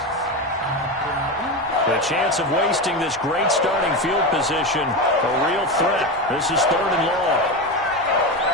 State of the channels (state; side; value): normal; both; correlation 0.18